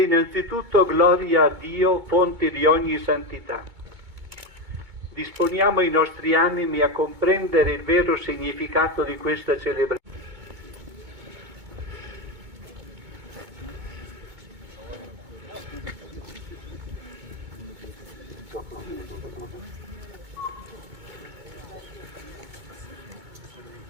innanzitutto gloria a Dio, fonte di ogni santità. Disponiamo i nostri animi a comprendere il vero significato di questa celebrazione.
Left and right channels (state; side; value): late; left; 2.2 ms